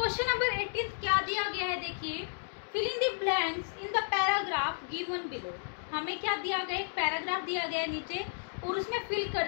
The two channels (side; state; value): right; silent; digital silence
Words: number 18 क्या दिया गया है, देखिए, filling the blanks in the paragraph given below. हमें क्या दिया गया, एक पैराग्राफ दिया गया है नीचे और उसमें फिल